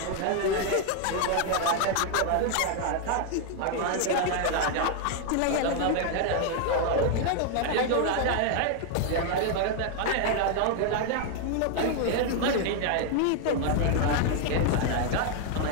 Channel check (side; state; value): both; different; correlation 0.00